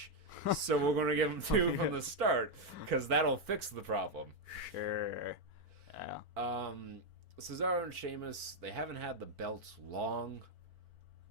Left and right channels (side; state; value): left; late; 4.5 ms